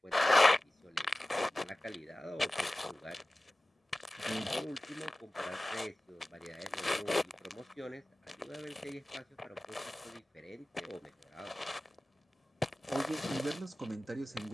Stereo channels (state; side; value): normal; both; correlation 0.97